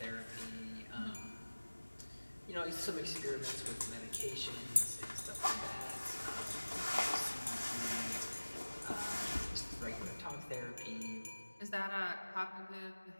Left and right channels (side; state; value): both; inverted; correlation -1.00